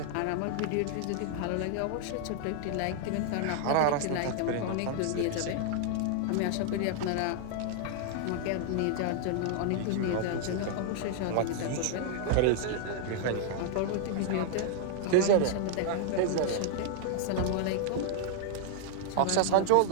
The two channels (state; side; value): different; both; correlation 0.00